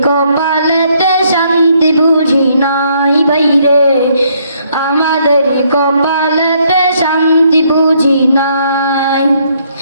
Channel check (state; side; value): inverted; both; correlation -0.69